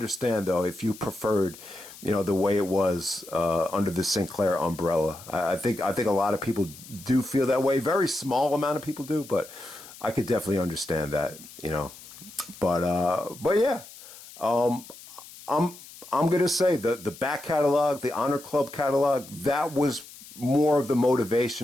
though if you preferred the way it was under the Sinclair umbrella. I think a lot of people do feel that way. Very small amount of people do, but I could definitely understand that, but yeah, I'm gonna say the back catalog, the Honor Club catalog, that was more of the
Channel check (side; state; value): left; noise; hiss, 18 dB below the sound